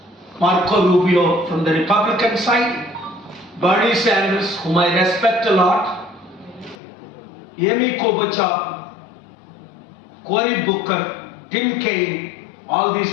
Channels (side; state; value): right; drops out; at 6.8 s